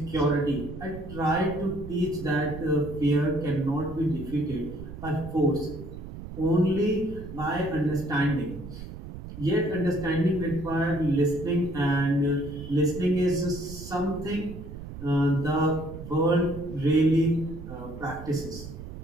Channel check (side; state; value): right; noise; rumble, 11 dB below the sound